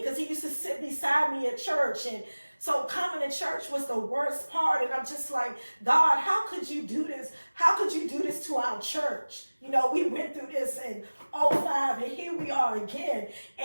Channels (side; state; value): both; inverted; correlation -1.00